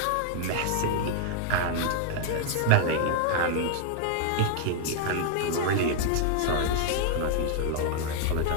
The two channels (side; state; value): both; different; correlation 0.00